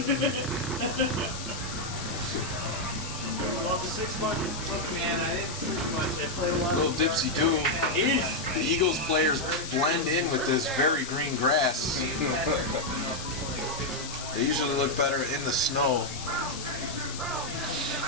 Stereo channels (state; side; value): noise; left; hiss, 9 dB below the sound